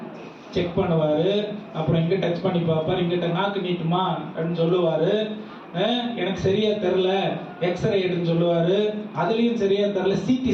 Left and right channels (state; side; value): identical; both; correlation 1.00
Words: செக் பண்ணுவாரு. அப்புறம் இங்க டச் பண்ணி பார்ப்பாரு, இங்கிட்ட நாக்கு நீட்டுமா அப்படின்னு சொல்லுவாரு. எனக்கு சரியா தெரியல, எக்ஸ்ரே எடுன்னு சொல்லுவாரு. அதுலயும் சரியா தெரியல, சிடி